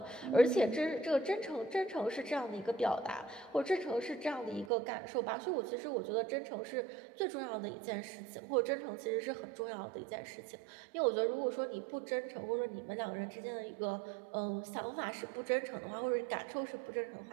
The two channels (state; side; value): drops out; left; at 4.7 s